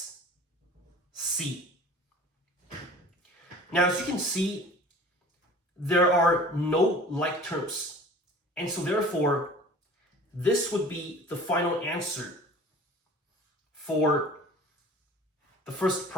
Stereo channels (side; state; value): both; normal; correlation 0.44